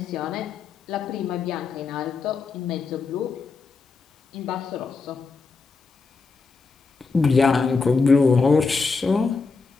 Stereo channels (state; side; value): quieter; right; 4.5 dB